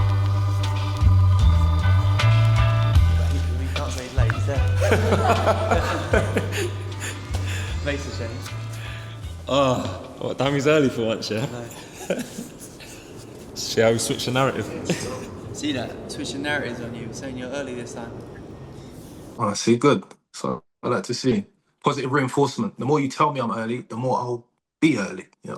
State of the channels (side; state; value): both; identical; correlation 1.00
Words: We can't say late, is there? Makes a change. What, Dammy's early for once, yeah? No. See how we switch the narrative. See that? Switching narratives on you, saying you're early this time. Oh, see, good. So I like to see positive reinforcement. The more you tell me I'm early, the more I'll be early. You know